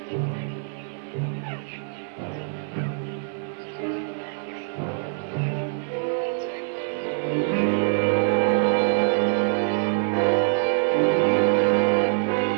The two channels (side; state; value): left; silent; 62 dB below the other